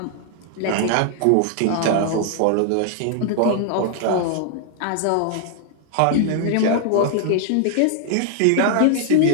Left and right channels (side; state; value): both; different; correlation 0.00